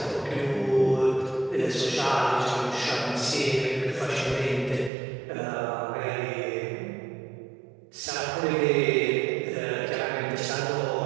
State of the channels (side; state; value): left; drops out; at 4.9 s